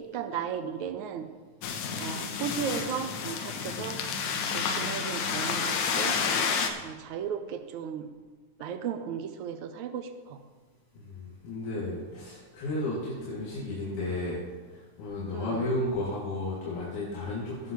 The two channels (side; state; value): right; late; 9.5 ms